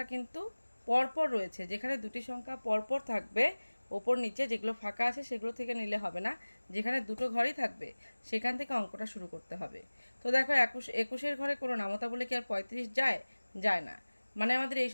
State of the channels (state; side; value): inverted; both; correlation -1.00